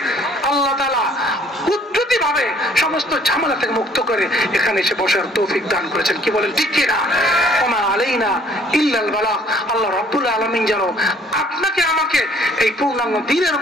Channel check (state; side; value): normal; both; correlation 0.59